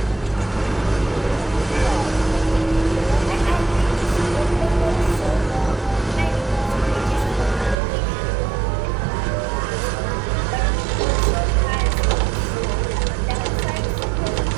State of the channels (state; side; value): drops out; left; at 7.8 s